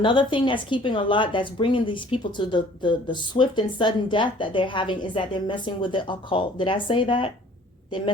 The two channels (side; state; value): both; normal; correlation 0.53